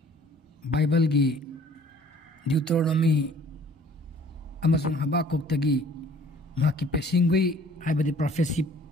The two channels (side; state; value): both; normal; correlation 0.54